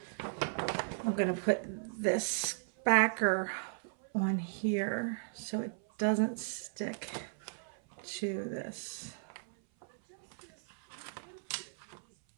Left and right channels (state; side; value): silent; left; 54 dB below the other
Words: I'm going to put this backer on here so it doesn't stick to this.